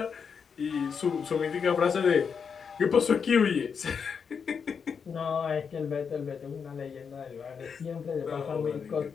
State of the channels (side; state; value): right; quieter; 6.3 dB